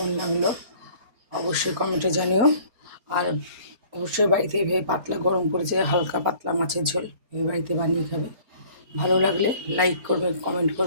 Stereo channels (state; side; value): late; left; 4.3 ms